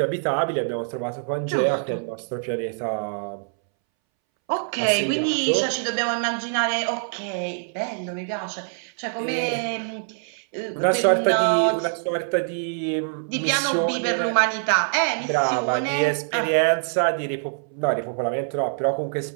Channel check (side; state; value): left; silent; 62 dB below the other